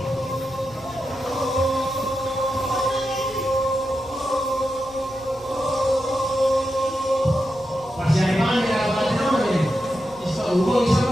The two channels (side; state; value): left; noise; rumble, 24 dB below the sound